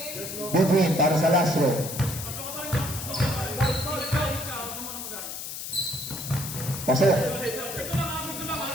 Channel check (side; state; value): left; noise; hiss, 7 dB below the sound